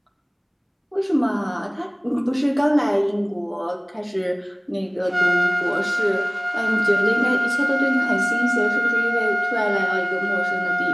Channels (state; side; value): identical; both; correlation 1.00